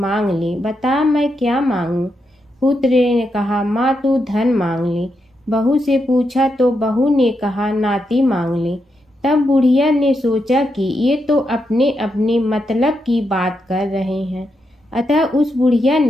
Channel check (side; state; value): both; normal; correlation 0.83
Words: ले, बता मैं क्या मांगूं? पुत्र ने कहा, माँ तू धन मांग ले। बहू से पूछा तो बहू ने कहा, नाती मांग ले। तब बुढ़िया ने सोचा कि ये तो अपने अपने मतलब की बात कर रहे हैं। अतः उस बुढ़िया